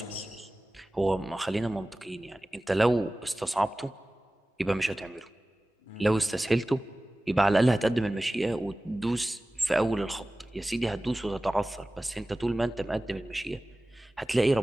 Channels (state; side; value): normal; both; correlation 0.97